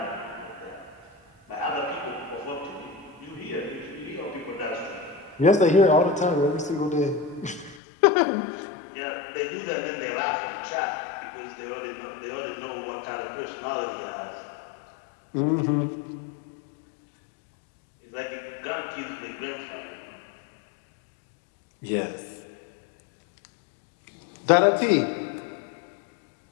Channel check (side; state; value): right; drops out; at 7.8 s